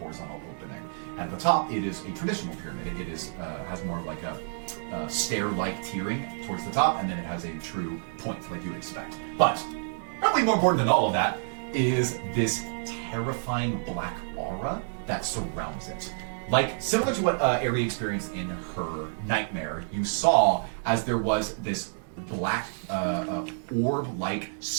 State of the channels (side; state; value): left; silent; digital silence